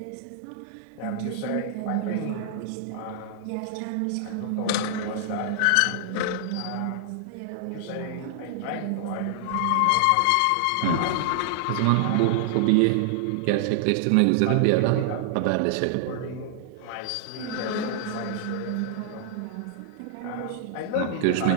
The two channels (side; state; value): both; different; correlation -0.01